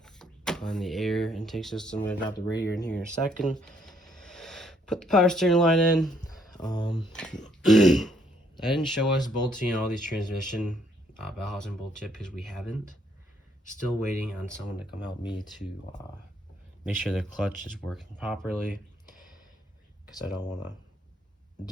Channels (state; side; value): normal; both; correlation 0.69